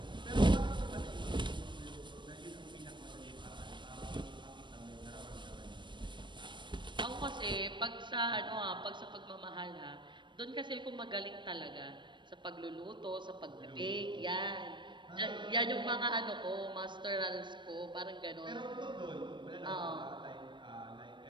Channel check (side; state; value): left; late; 0.23 ms